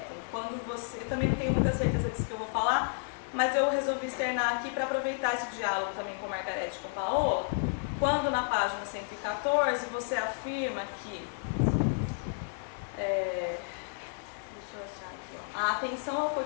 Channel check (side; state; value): right; silent; digital silence